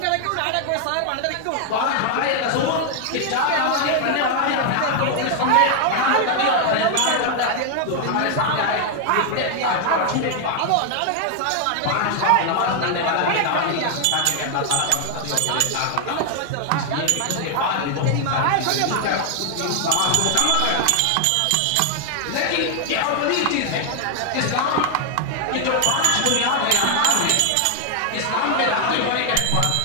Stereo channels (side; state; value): both; different; correlation 0.00